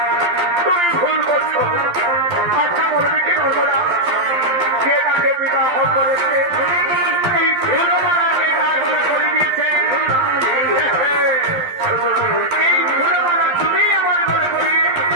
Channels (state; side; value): late; left; 12 ms